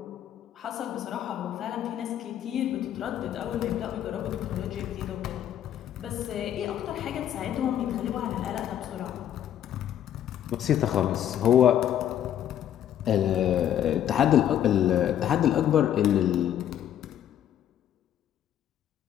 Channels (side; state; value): right; quieter; 10.7 dB